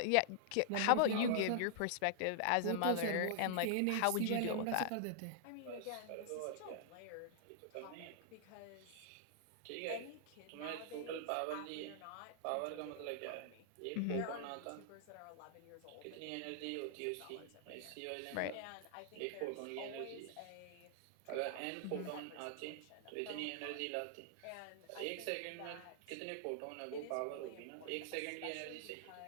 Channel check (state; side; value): different; both; correlation -0.01